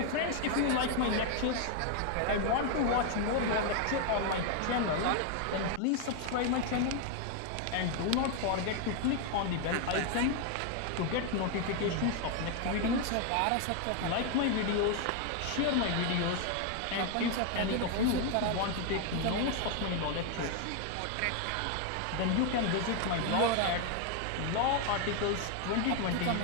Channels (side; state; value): both; different; correlation 0.00